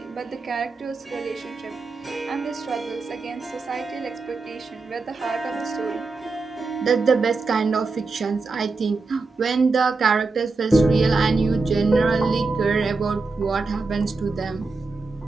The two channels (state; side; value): quieter; left; 3.9 dB